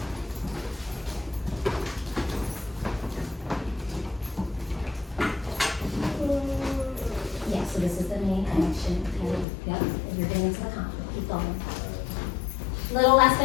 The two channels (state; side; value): drops out; right; at 9.5 s